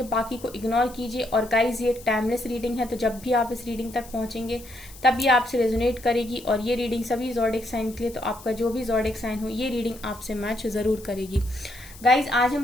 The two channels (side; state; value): left; noise; hiss, 19 dB below the sound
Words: बाकी को इग्नोर कीजिए। और गाइस, ये एक टाइमलेस रीडिंग है, तो जब भी आप इस रीडिंग तक पहुंचेंगे तभी आपसे रेजोनेट करेगी। और ये रीडिंग सभी ज़ोडिएक साइन के लिए, तो आपका जो भी ज़ोडिएक साइन हो ये रीडिंग आपसे मैच जरूर करेगी। गाइज, आज